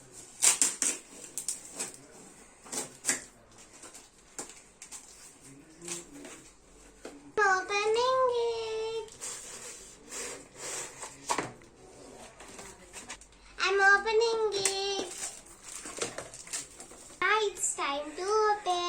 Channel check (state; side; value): identical; both; correlation 1.00